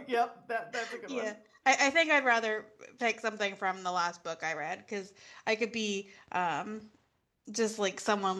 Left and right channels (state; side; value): identical; both; correlation 1.00